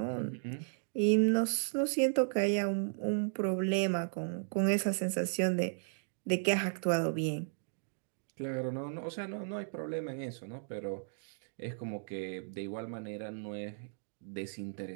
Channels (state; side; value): silent; left; digital silence